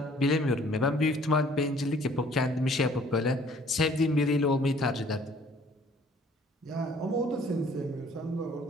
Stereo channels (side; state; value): both; normal; correlation 0.57